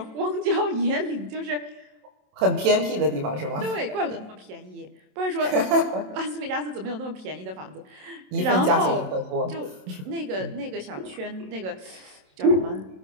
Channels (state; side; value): late; left; 27 ms